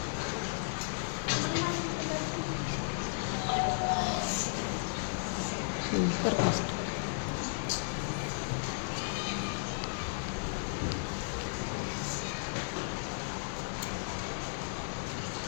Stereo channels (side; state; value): right; silent; digital silence